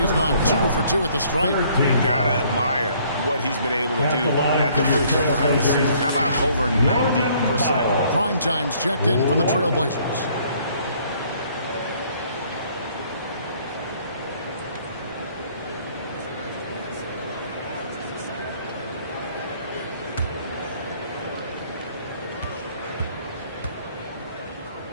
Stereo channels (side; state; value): both; inverted; correlation -0.61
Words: gone 2 for 2 at the stripe. Gotta admire what he's been able to do at the free throw line this season. How about over 90%? Prime time's checked in for the Trailblazers.